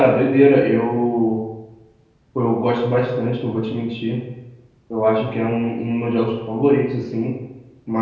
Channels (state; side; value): identical; both; correlation 1.00